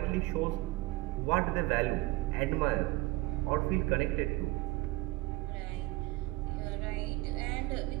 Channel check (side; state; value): left; quieter; 19.8 dB